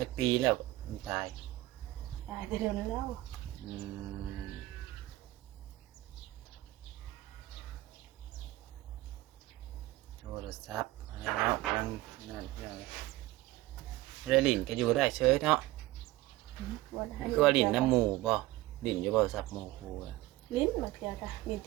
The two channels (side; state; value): left; quieter; 18.1 dB